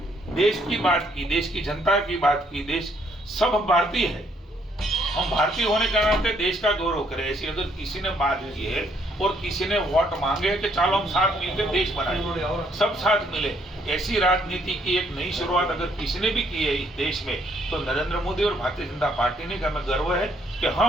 देश की बात की, देश की जनता की बात की, देश सब भारतीय है, हम भारतीय होने के नाते देश का गौरव करें, ऐसी अगर किसी ने बात की है और किसी ने वोट मांगे कि चलो हम साथ मिलकर देश बनाएं, सब साथ मिले, ऐसी राजनीति की एक नई शुरुआत अगर किसी ने भी की है इस देश में तो नरेंद्र मोदी और भारतीय जनता पार्टी ने। हमें गर्व है कि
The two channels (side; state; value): both; normal; correlation 0.68